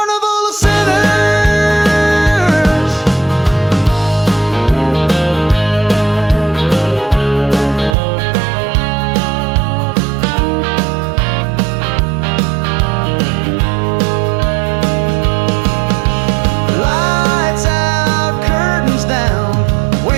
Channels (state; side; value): drops out; left; at 8.0 s